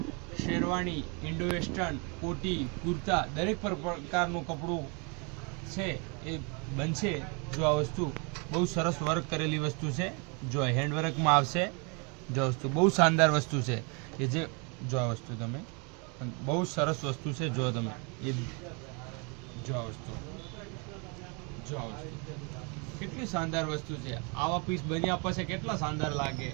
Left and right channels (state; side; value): quieter; left; 33.1 dB